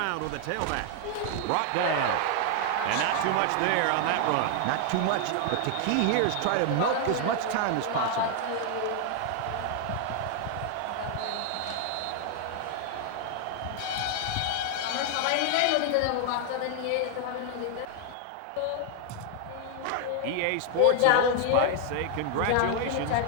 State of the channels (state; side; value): different; both; correlation 0.00